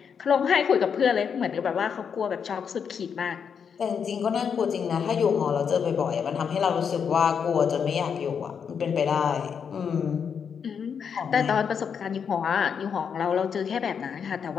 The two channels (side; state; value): right; quieter; 7.0 dB